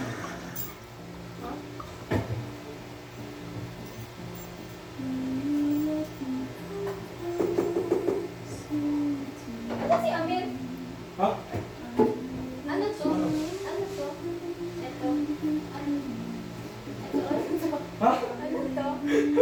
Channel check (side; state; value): both; identical; correlation 1.00